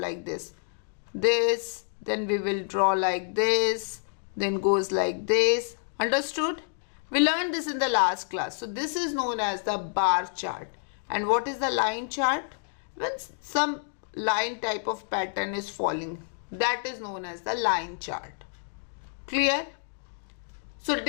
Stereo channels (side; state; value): right; silent; digital silence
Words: this. This, then we will draw like this, then goes like this. Understood? We learned this in the last class. So this is known as the bar chart. And what is the line chart? When some line type of pattern is falling, that is known as the line chart. Clear? So